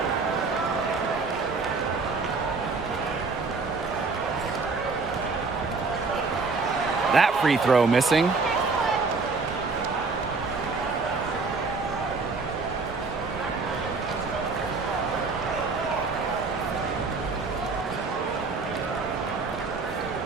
That free throw missing.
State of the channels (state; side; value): quieter; left; 4.2 dB